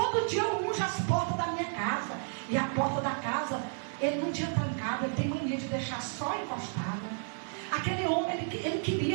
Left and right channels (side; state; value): left; silent; 57 dB below the other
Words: dia eu unjo as portas da minha casa. E a porta da casa, ele não tinha trancado. Ele tem mania de deixar só encostada. Aquele homem, ele